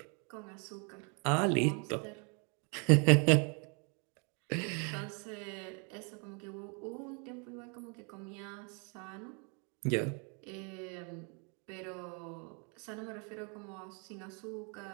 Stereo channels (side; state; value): left; quieter; 35.8 dB